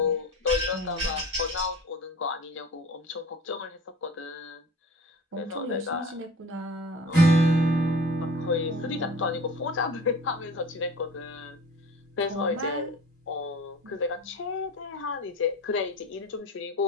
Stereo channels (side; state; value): both; normal; correlation 0.39